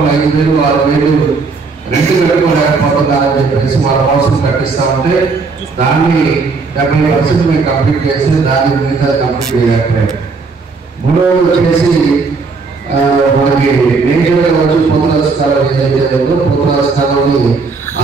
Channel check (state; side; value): quieter; left; 4.4 dB